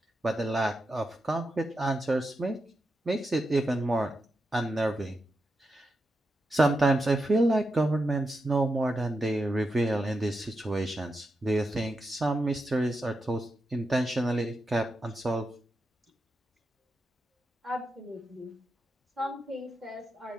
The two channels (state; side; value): normal; both; correlation 0.87